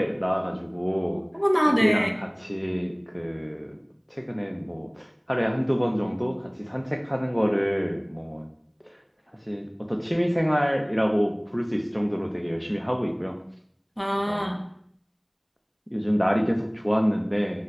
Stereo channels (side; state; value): both; identical; correlation 1.00